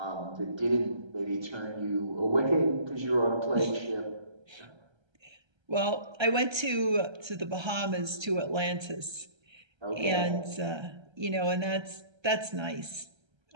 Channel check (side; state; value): left; late; 1.3 ms